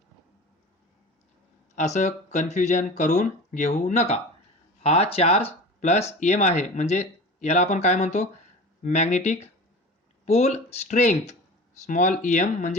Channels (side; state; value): both; normal; correlation 0.35